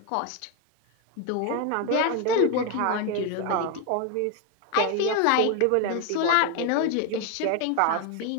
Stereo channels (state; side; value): different; both; correlation 0.01